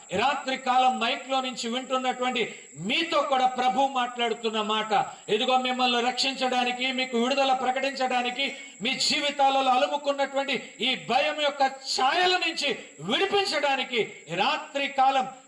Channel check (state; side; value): identical; both; correlation 1.00